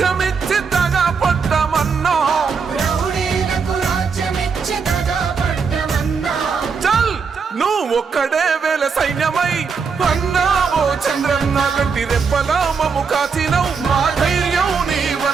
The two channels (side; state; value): left; quieter; 5.5 dB